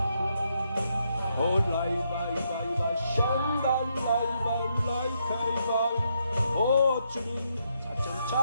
올라이바이바이바 샨달라이발라이카이바 오 주님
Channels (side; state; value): both; inverted; correlation -0.78